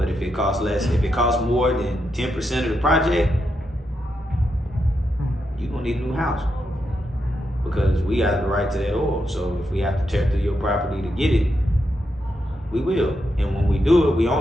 if it costs more than 10% of the project, you're gonna need a new house. Because we got the right to that oil. So if we have to tear through your property to get it, we will. And when we do it, we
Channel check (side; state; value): both; normal; correlation 0.84